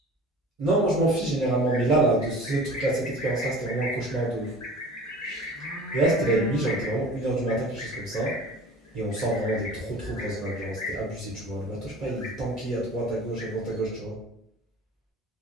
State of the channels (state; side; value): normal; both; correlation 0.42